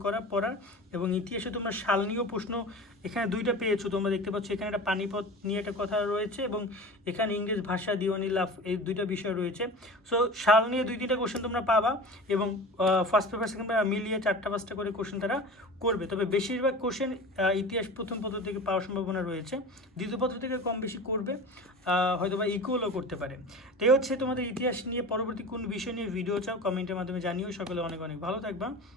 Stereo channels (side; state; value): both; normal; correlation 0.35